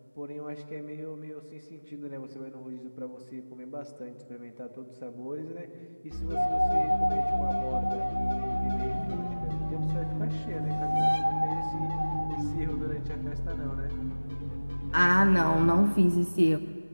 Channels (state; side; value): inverted; both; correlation -1.00